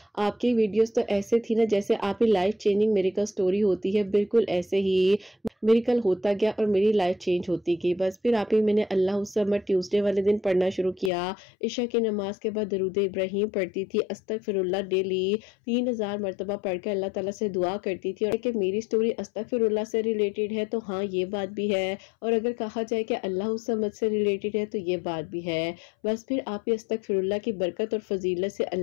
आपकी वीडियोस तो ऐसे थी ना जैसे आप ही लाइफ चेंजिंग मिरेकल स्टोरी होती है, बिल्कुल ऐसे ही मिरेकल होता गया और मेरी लाइफ चेंज होती गई। बस फिर आप ही मैंने अल्लाह समर ट्यूसडे वाले दिन पढ़ना शुरू किया। इशा की नमाज के बाद दरूद इब्राहिम पढ़ती थी, अस्तगफिरुल्लाह डेली 3000 मरतबा पढ़ के अल्लाह ताला से दुआ करती थी। और कि मेरी स्टोरी अस्तगफिरुल्लाह से रिलेटेड है तो हाँ ये बात भी है, और अगर कहा जाए कि अल्लाह समद से रिलेटेड है तो ये बात भी है। बस फिर आप ही अस्तगफिरुल्लाह की बरकत और फजीलत से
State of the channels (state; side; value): drops out; right; at 11.1 s